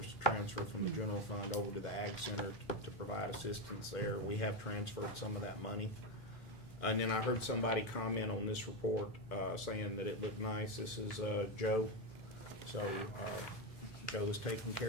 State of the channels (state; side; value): normal; both; correlation 0.12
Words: transfer from the general fund over to the Ag Center to provide assistance there. We have transferred some of that money. And then I heard somebody comment on this report saying that it looked nice. This is Joe. So Joe is taking